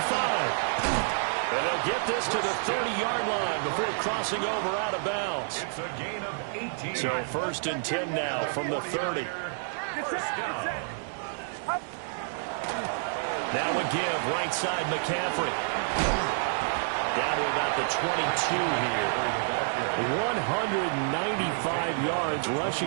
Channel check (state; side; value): silent; left; digital silence